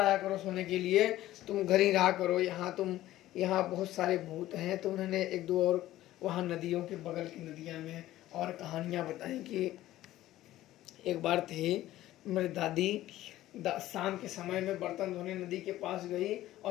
करो सोने के लिए, तुम घर ही रहा करो, यहाँ बहुत सारे भूत हैं। तो उन्होंने 1-2 और वहाँ नदियों के बगल की नदियाँ में और कहानियाँ बताई कि एक बार थे मेरी दादी शाम के समय में बर्तन धोने नदी के पास गई,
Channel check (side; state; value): right; quieter; 14.8 dB